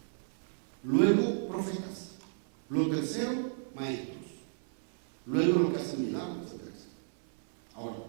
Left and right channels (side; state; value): left; silent; 55 dB below the other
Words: luego profetas, lo tercero maestros, luego los que hacen milagros, etcétera. Ahora,